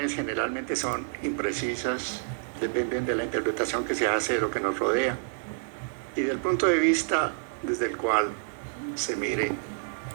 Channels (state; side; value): silent; left; digital silence